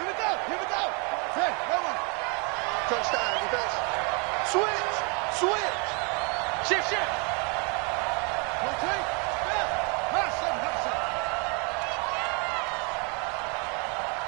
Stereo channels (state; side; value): quieter; left; 34.2 dB